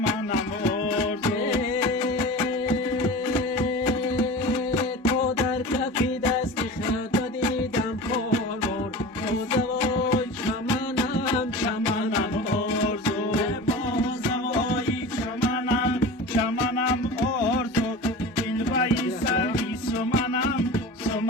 آرزو تو در کفی دست خدا دیدم پرمار تو زوای چمنم چمنم آرزو بازوای چمنم چمنم آرزو دلبری سیری سمنم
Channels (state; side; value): normal; both; correlation 0.33